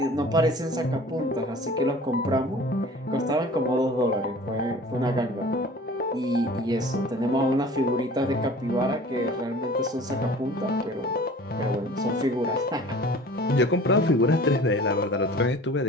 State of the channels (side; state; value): both; normal; correlation 0.44